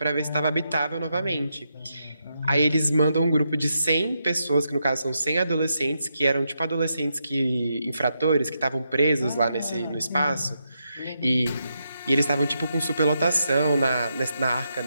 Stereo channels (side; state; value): both; inverted; correlation -0.83